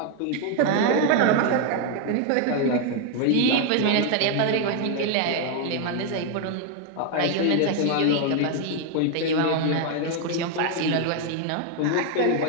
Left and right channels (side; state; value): both; different; correlation 0.01